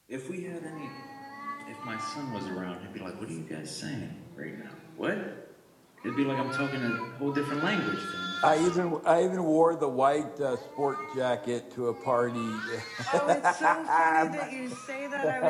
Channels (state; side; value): identical; both; correlation 1.00